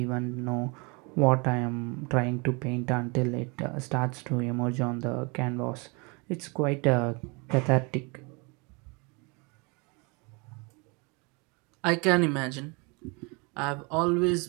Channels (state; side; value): quieter; left; 29.9 dB